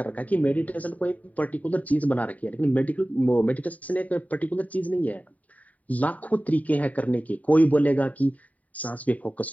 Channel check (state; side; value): late; right; 0.071 ms